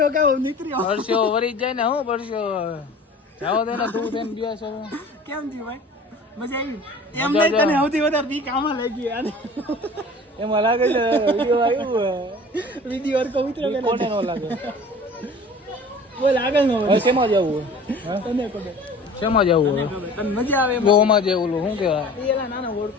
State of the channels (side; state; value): both; normal; correlation 0.43